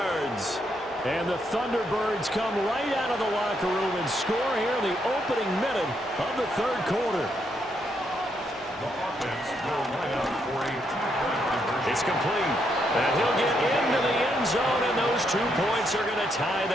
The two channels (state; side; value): normal; both; correlation 0.77